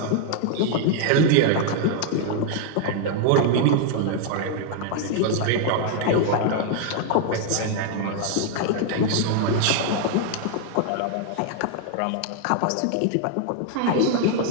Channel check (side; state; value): both; different; correlation 0.00